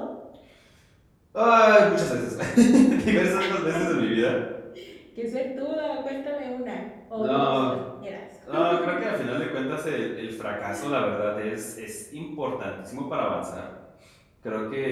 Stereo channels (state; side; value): identical; both; correlation 1.00